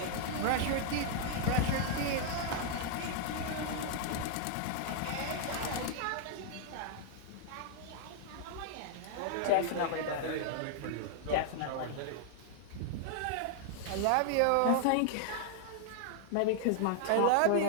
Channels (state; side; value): different; both; correlation -0.01